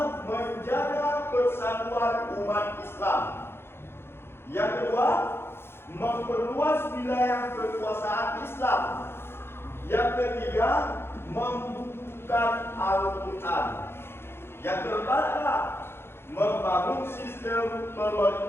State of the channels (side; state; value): right; late; 0.11 ms